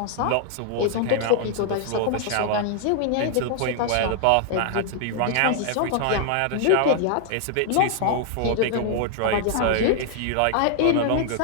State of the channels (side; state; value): both; different; correlation 0.00